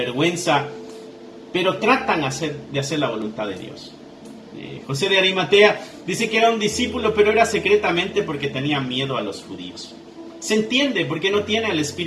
pero tratan de hacer la voluntad de Dios. José de Arimatea dice que era un discípulo, pero era secretamente porque tenía miedo a los judíos. Se entiende porque no tiene el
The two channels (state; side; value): identical; both; correlation 1.00